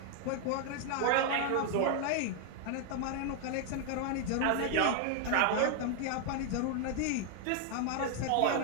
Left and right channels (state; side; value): different; both; correlation 0.00